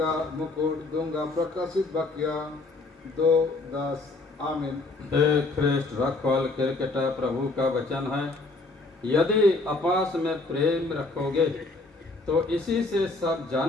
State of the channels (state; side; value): quieter; right; 3.4 dB